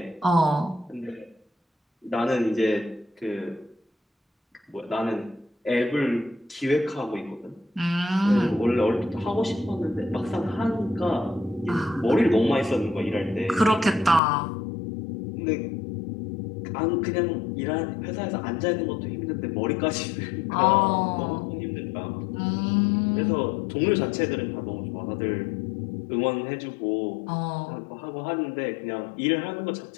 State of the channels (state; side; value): drops out; right; at 14.2 s